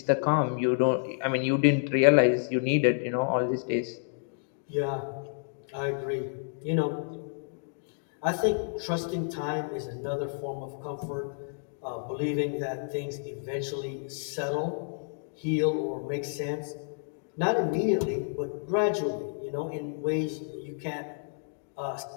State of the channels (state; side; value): silent; right; digital silence